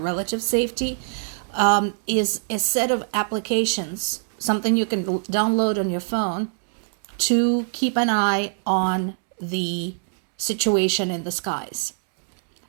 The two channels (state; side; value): silent; left; 63 dB below the other